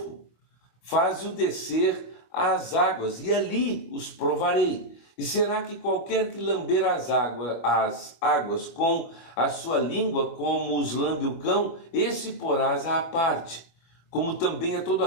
faze-o descer às águas, e ali os provarei. E será que qualquer que lamber as águas com a sua língua, como os lambe o cão, esse porás à parte, como também a todo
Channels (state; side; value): late; right; 25 ms